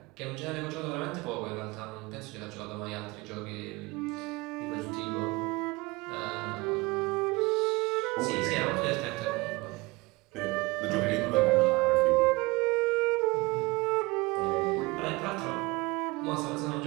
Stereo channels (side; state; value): left; quieter; 23.7 dB